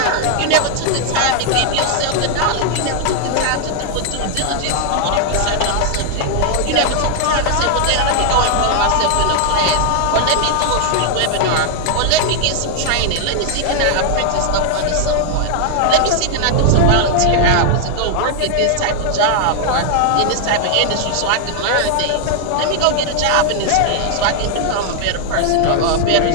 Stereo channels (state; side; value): different; both; correlation 0.00